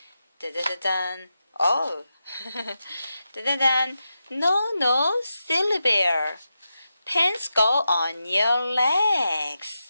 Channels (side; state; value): both; inverted; correlation -0.89